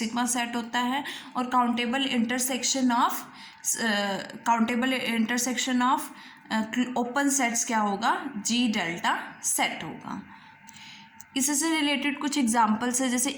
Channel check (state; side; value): identical; both; correlation 1.00